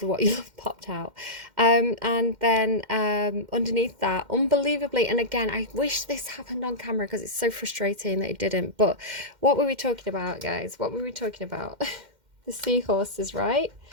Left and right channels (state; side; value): late; left; 2.1 ms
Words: what you love popped out. And then underneath that, unbelievably, and again, I wish this happened on camera because it's so frustrating that it didn't. But what were we talking about, guys? What were we talking about? The seahorses, right?